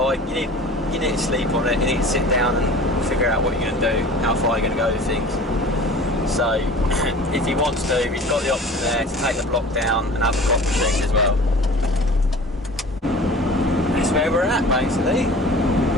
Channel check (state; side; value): normal; both; correlation 0.42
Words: you need to sleep on it, you need to sit down and figure out what you're going to do, how far you're going to go with things. So if he wants to, he's got the option there to take the block down and have a clock machine as well. That's where we're at basically.